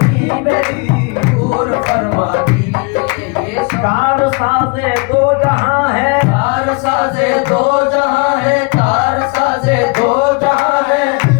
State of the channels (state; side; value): quieter; right; 30.2 dB